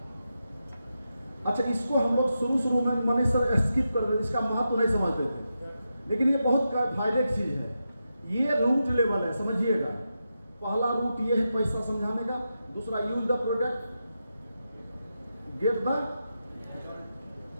अच्छा, इसको हम लोग शुरू में मनीष सर स्किप कर देते, इसका महत्व नहीं समझते थे, लेकिन ये बहुत फायदे की चीज है। ये रूट लेवल है, समझिएगा। पहला रूट ये है पैसा समझाने का, दूसरा use the product, get the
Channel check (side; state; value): both; inverted; correlation -0.88